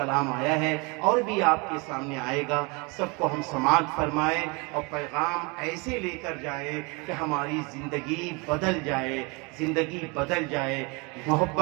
آیا ہے اور بھی آپ کے سامنے آئے گا، سب کو ہم سماعت فرمائیں اور پیغام ایسے لے کر جائیں کہ ہماری زندگی بدل جائے، زندگی بدل جائے۔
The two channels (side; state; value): left; quieter; 29.2 dB